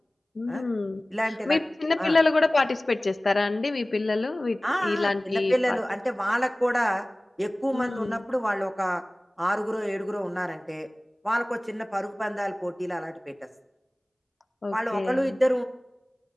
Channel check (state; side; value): normal; both; correlation 0.98